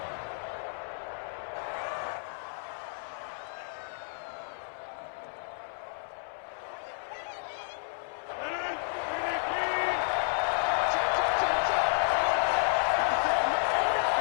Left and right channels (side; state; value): right; silent; 57 dB below the other